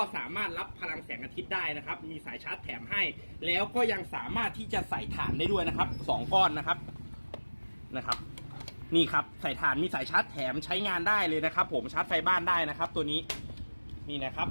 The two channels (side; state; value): both; inverted; correlation -1.00